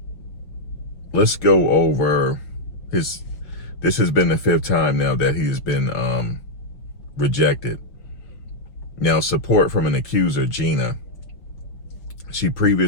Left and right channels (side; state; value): right; late; 6.1 ms